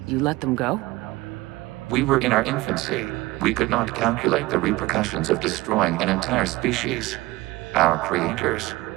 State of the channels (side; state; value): left; quieter; 19.7 dB